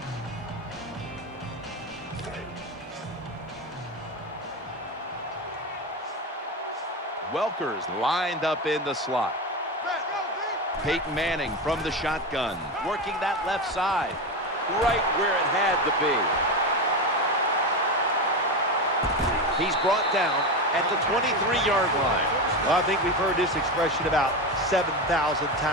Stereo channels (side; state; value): both; normal; correlation 0.18